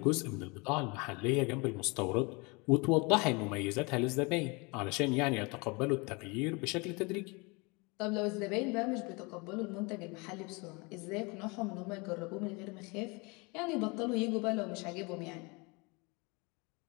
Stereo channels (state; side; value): quieter; right; 28.4 dB